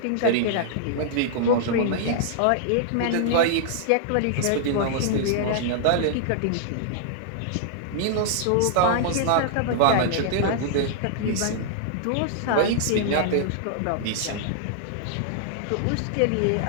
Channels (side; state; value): both; different; correlation -0.01